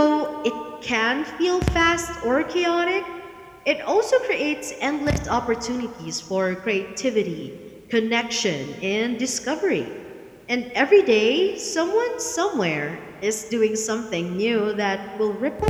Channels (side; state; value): both; identical; correlation 1.00